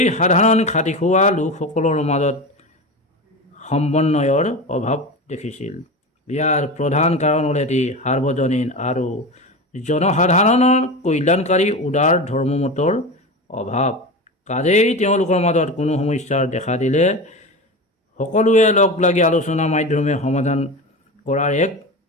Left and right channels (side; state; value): both; normal; correlation 0.25